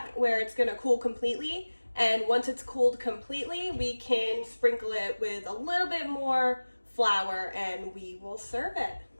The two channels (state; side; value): inverted; both; correlation -1.00